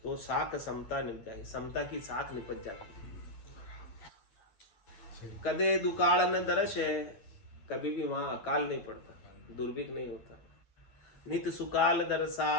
तो साक समता निप जाए, समता की साख निपट जाती है। कदे दुकाल न दर्श है, कभी भी वहाँ अकाल नहीं पड़ता, दुर्भिक्ष नहीं होता। नित सुकाल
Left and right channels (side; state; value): right; late; 9.3 ms